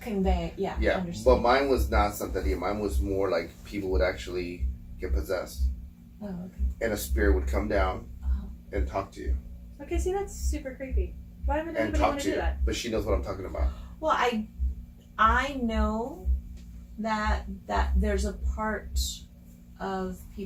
Convey, Yeah, understand. but mine was not Santeria. Mine was more like people would actually get possessed. Oh, okay. and a spirit would come down and talk to you. Okay, see, that's super creepy. Why would And anybody talk want to to do you. that? But she knows what I'm talking about. Well, I know that there's a part of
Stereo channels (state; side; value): identical; both; correlation 1.00